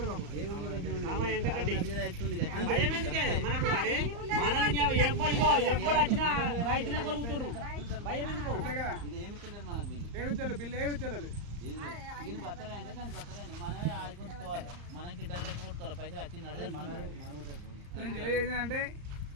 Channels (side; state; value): left; late; 34 ms